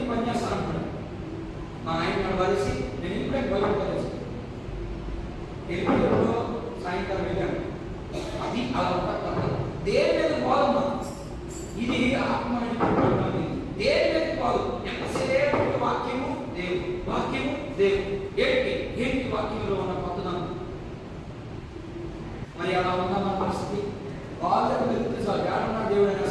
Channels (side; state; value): both; identical; correlation 1.00